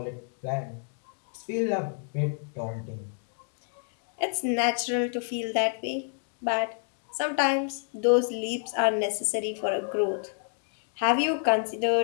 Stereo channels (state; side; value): silent; right; 59 dB below the other